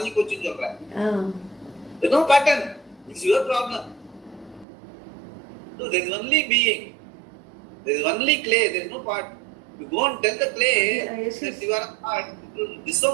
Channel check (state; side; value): drops out; left; at 4.7 s